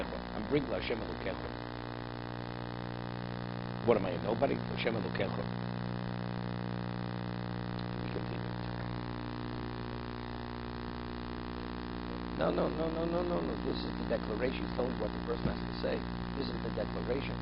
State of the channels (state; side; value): identical; both; correlation 1.00